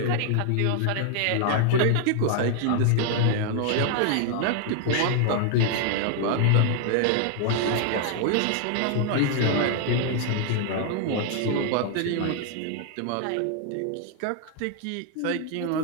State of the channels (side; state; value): both; different; correlation 0.00